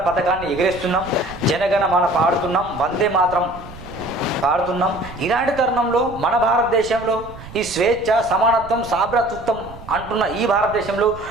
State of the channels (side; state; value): right; noise; rumble, 16 dB below the sound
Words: పథకాన్ని ఎగిరేస్తున్నాం, జనగణ మన పాడుతున్నాం, వందే మాత్రం పాడుతున్నాం. ఇలాంటి తరుణంలో మన భారతదేశంలో ఈ స్వేచ్ఛ, సమానత్వం, సాభ్రతృత్వం అంటున్న ఈ భారతదేశంలో,